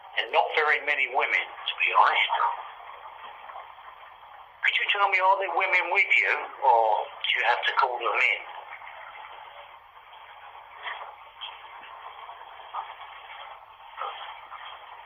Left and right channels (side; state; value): both; identical; correlation 1.00